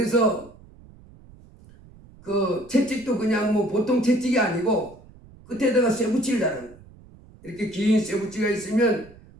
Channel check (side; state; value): right; noise; rumble, 23 dB below the sound